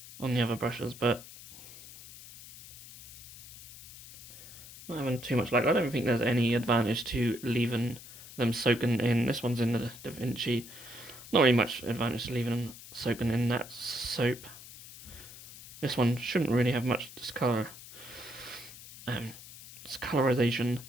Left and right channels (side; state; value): left; noise; hiss, 16 dB below the sound